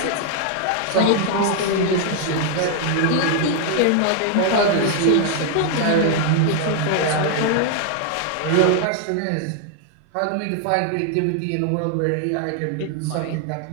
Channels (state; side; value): different; both; correlation 0.00